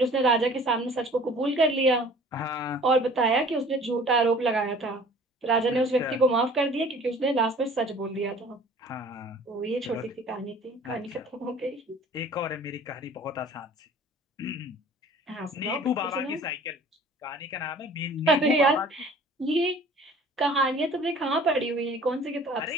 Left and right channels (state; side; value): normal; both; correlation 0.48